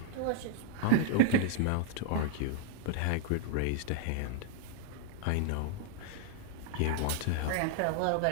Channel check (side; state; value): both; different; correlation -0.01